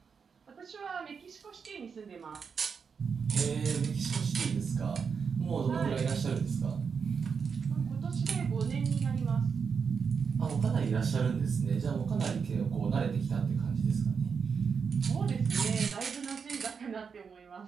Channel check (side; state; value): left; quieter; 6.0 dB